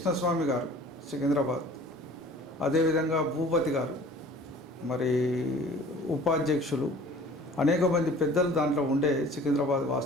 గారు సికింద్రాబాద్, అదేవిధంగా భూపతి గారు, మరి ఉపాధ్యక్షులు, అనేక మంది పెద్దలు దాంట్లో ఉండే సికింద్రాబాద్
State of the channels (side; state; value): both; normal; correlation 0.48